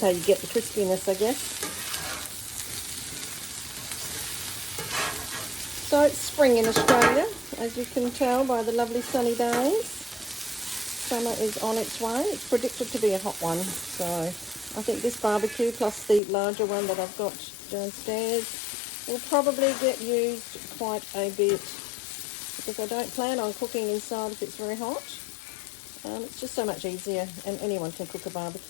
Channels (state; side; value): drops out; right; at 16.2 s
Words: you get the crispiness, I guess. So it's spring in Australia, as you can tell by the lovely sunny days. Summer is on its way. It's predicted to be a hot one. So I think this barbecue plus the larger one that I've got downstairs will probably get used quite a bit because I don't plan on cooking inside if it's very hot. It's just so much easier, and anyone can cook a